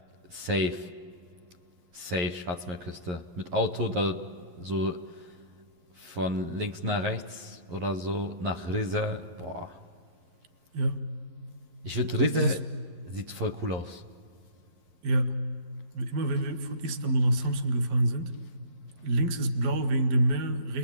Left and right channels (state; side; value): late; left; 11 ms